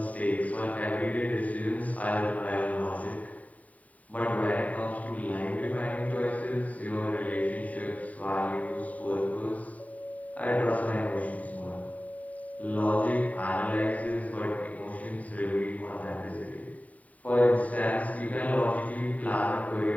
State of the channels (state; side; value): late; right; 0.070 ms